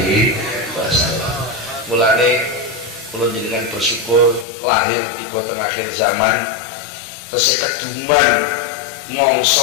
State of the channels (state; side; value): drops out; right; at 4.5 s